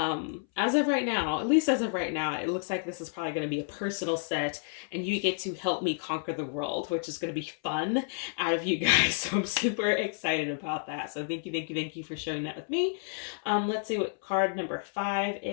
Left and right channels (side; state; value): right; silent; 58 dB below the other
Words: of right now, at least as of right now, it looks like this is probably going to be a personal set, and you get to help me conquer the world, which is going to be fun out of you guys. So I'm super excited about that. So thank you for sharing that with me. Let's see what card number 5